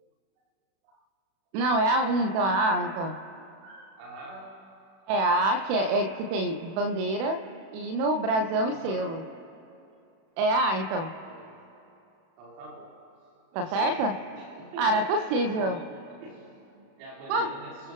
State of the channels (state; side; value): late; left; 36 ms